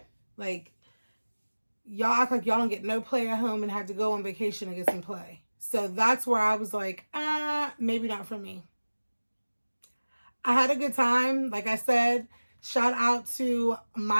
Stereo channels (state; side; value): inverted; both; correlation -1.00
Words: Like, y'all act like y'all don't get no play at home and have to go on vacation and get some play. So that's where I was like, maybe not for me. I had a good time. Like I said, shout out to